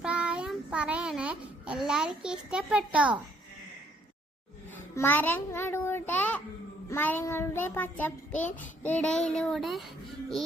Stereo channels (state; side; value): normal; both; correlation 0.66